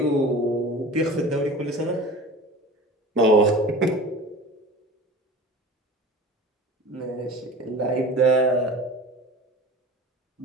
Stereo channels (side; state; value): both; normal; correlation 0.37